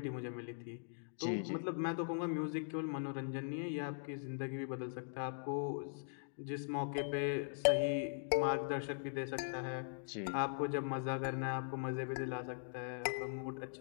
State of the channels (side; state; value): right; silent; digital silence